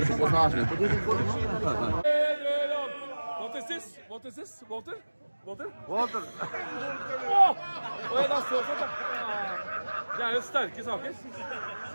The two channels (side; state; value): both; inverted; correlation -1.00